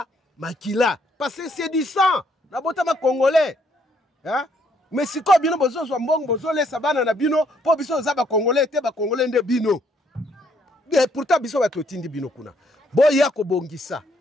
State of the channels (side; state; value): both; normal; correlation 0.69